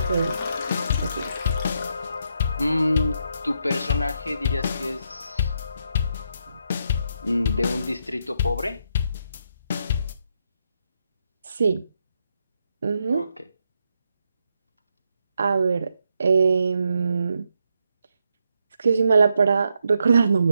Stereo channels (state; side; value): inverted; both; correlation -0.80